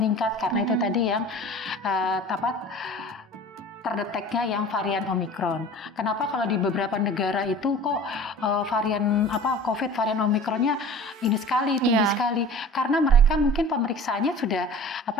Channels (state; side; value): normal; both; correlation 0.41